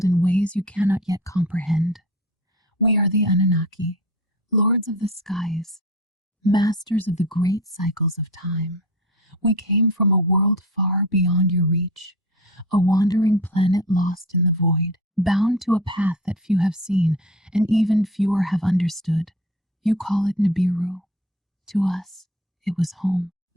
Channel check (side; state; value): both; normal; correlation 0.34